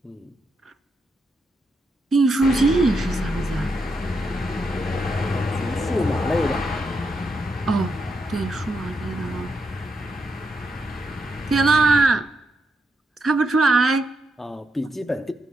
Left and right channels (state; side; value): normal; both; correlation 0.82